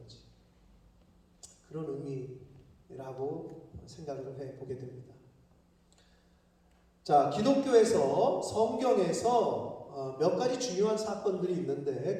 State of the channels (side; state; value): both; identical; correlation 1.00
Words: 그런 의미라고 생각을 해보게 됩니다. 자, 기독교에서 성경에서 몇 가지 중요한 사건들이 있는데